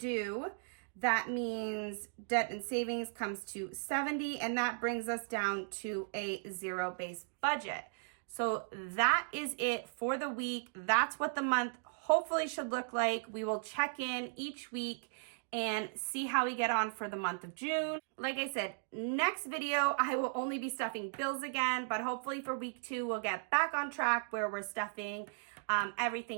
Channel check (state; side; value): silent; left; digital silence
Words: That means debt and savings comes to 70 and that brings us down to a zero-based budget. So that is it for the week. That's what the month hopefully should look like. We will check in each week and see how we get on for the month of June. Like I said, next video, I will only be stuffing bills again, but hopefully for week 2, we'll get back on track where we're stuffing